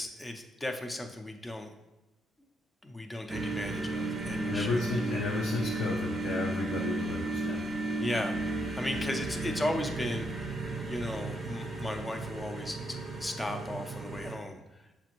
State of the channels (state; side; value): normal; both; correlation 0.77